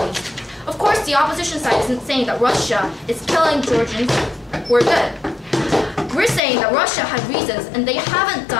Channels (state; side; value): drops out; right; at 6.4 s